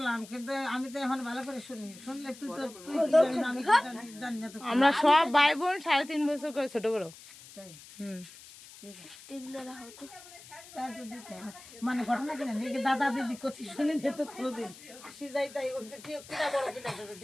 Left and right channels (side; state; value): left; noise; hiss, 19 dB below the sound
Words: কিন্তু আমি তো এখন ভালো করে শুনি শুনলে তুই তো তুই কি জানিস না, আমি কি জানি না তো আমরা সব ভাই বোন 3.5 বছর করে ছোট বড় তাই হুম ঠিক আছে এগুলো রাখো তো তার তো দিতে হবে। মানে ঘটনা কি জানি এই দাদা দিদি কথা শুনে নিত কোনোদিন আসি যাই তাই কিনা বড় কিনা